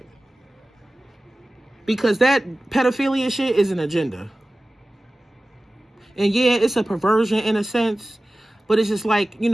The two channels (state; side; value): normal; both; correlation 0.96